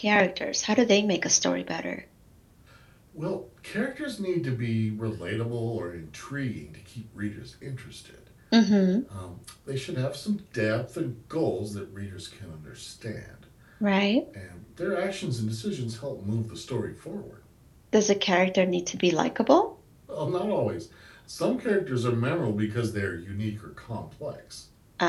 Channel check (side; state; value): both; identical; correlation 1.00